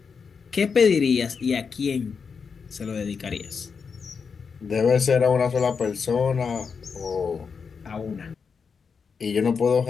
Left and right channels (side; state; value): right; quieter; 5.7 dB